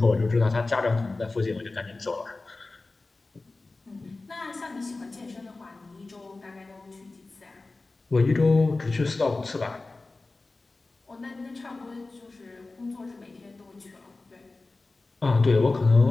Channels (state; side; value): quieter; right; 3.4 dB